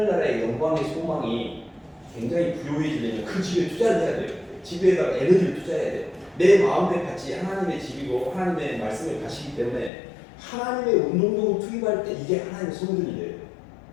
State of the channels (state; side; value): drops out; right; at 9.9 s